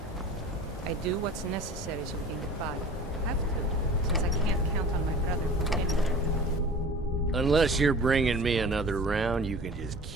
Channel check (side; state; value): both; normal; correlation 0.41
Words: I do what's necessary so we can get by. Have to, since I can't count on my brother for anything. Unless you're bringing me another round, you can just